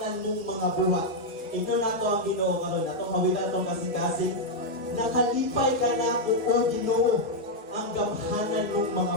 mong mga buhat. Ito na to ang Ginoo karon, atong mawilan tong kasing-kasing. Nakalipay ka nako o Ginoo ang gamhanan mong mga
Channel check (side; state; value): both; normal; correlation -0.01